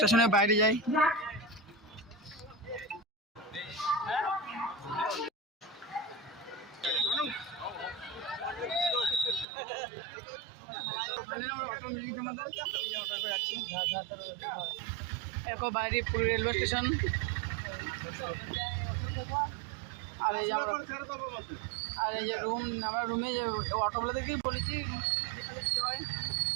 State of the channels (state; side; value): drops out; left; at 9.5 s